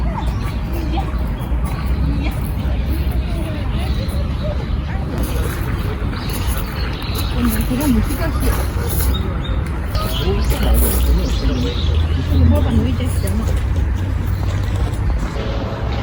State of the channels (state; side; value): identical; both; correlation 1.00